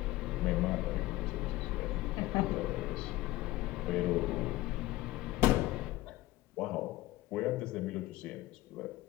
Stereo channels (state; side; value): quieter; right; 17.5 dB